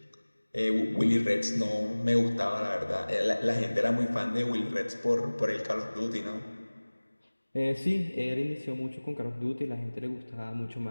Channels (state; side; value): inverted; both; correlation -1.00